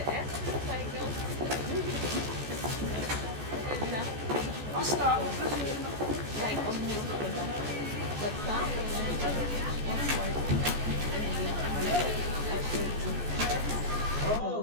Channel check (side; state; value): left; late; 14 ms